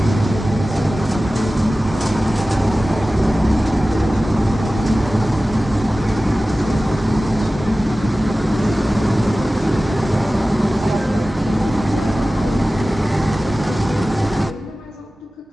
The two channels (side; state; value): both; normal; correlation 0.96